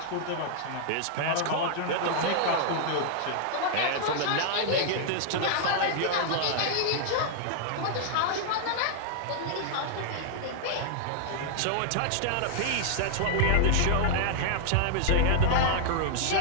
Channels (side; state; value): both; different; correlation -0.01